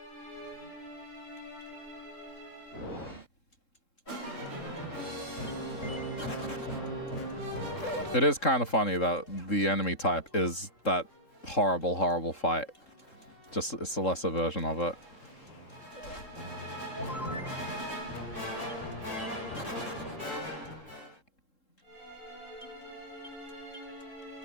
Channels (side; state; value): right; late; 3.7 ms